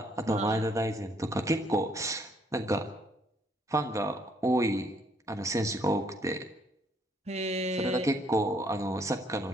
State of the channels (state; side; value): normal; both; correlation 0.67